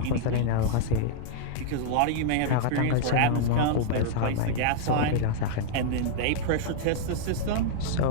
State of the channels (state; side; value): different; both; correlation -0.02